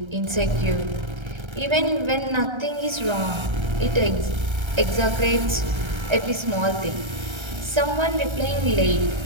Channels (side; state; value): left; late; 1.3 ms